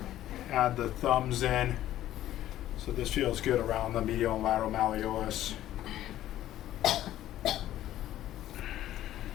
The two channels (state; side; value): quieter; right; 13.3 dB